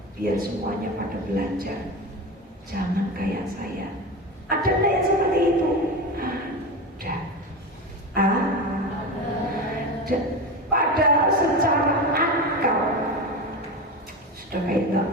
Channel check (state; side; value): normal; both; correlation 0.23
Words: biar semuanya pada belajar. Jangan kayak saya." Ada nggak yang seperti itu? Ada. Padahal secara akal sudah kayak nggak